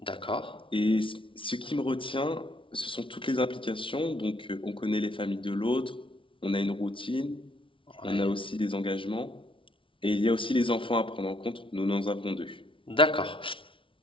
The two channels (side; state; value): right; late; 0.25 ms